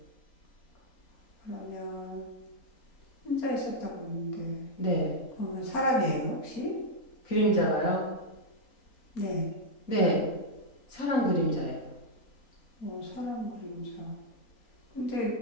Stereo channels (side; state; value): right; late; 3.8 ms